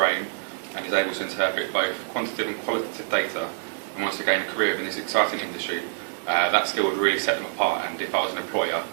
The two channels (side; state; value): left; silent; digital silence